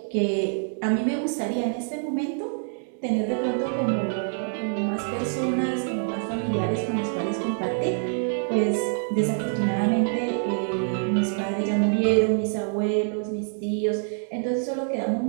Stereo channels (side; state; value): left; silent; 61 dB below the other